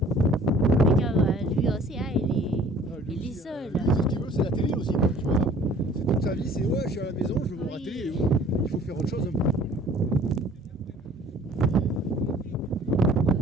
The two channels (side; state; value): both; normal; correlation 0.52